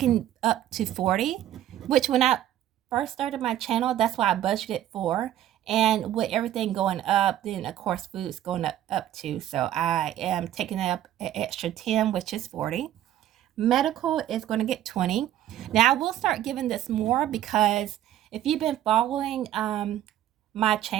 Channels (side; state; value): left; quieter; 12.3 dB